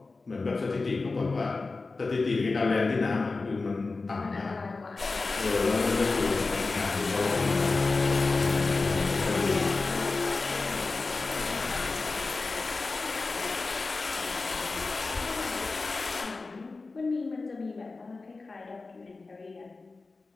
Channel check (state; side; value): quieter; right; 3.8 dB